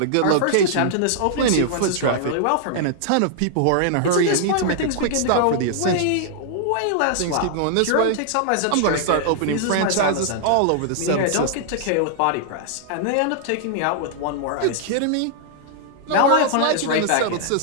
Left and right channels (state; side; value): different; both; correlation -0.01